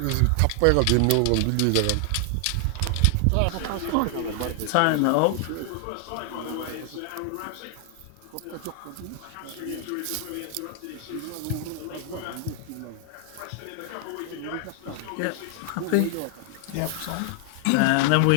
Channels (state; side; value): different; both; correlation 0.00